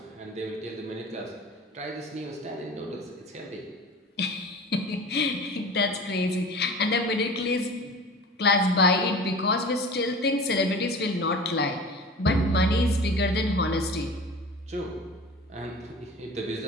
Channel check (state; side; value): normal; both; correlation 0.38